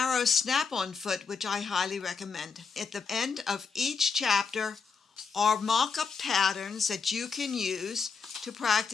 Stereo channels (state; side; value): quieter; right; 5.3 dB